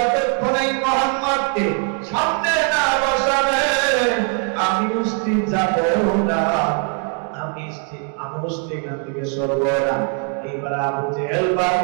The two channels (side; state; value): left; quieter; 39.8 dB